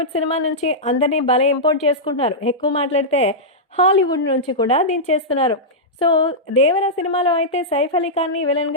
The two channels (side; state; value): both; normal; correlation -0.10